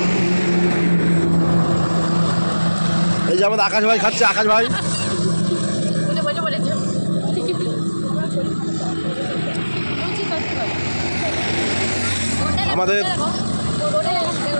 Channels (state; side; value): inverted; both; correlation -1.00